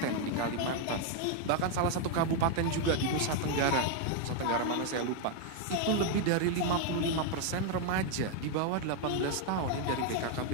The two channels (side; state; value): both; different; correlation 0.00